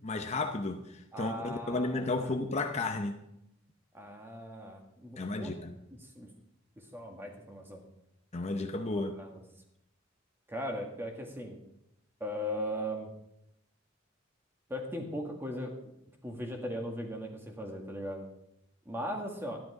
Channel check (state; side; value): normal; both; correlation 0.42